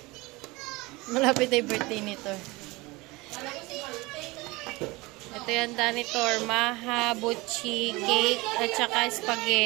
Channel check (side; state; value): left; quieter; 22.9 dB